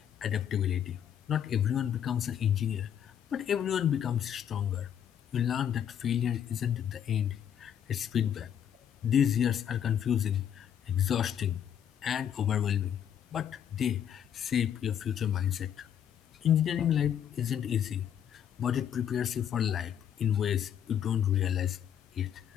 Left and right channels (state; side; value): quieter; right; 9.2 dB